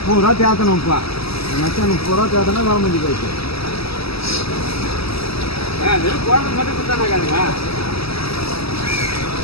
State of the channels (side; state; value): right; late; 0.76 ms